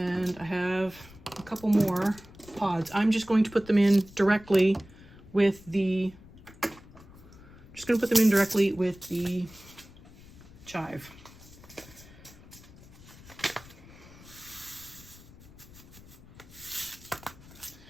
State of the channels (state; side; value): noise; left; rumble, 20 dB below the sound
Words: I have a couple more pods. I'm just going to put them in directly with the chive.